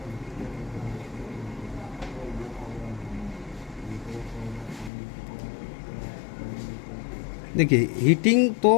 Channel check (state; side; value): drops out; right; at 4.9 s